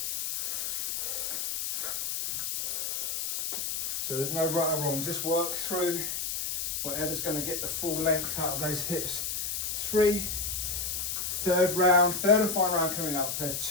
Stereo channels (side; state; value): left; noise; hiss, 2 dB below the sound